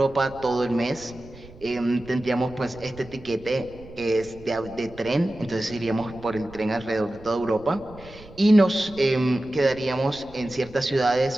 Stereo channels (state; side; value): noise; right; rumble, 20 dB below the sound